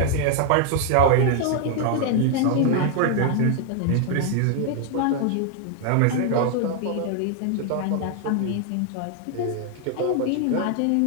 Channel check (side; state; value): both; different; correlation 0.00